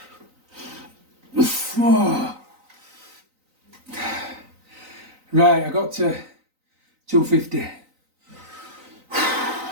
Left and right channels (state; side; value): late; left; 3.9 ms